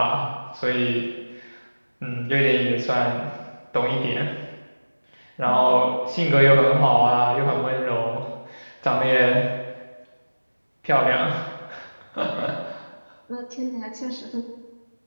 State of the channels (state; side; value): inverted; both; correlation -1.00